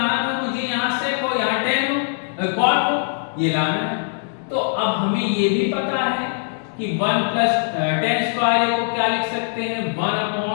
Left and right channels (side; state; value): right; silent; digital silence